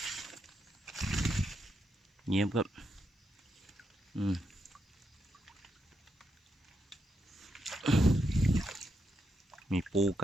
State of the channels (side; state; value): both; normal; correlation 0.82